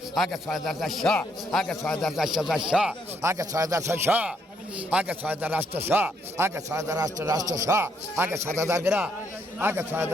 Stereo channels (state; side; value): normal; both; correlation 0.73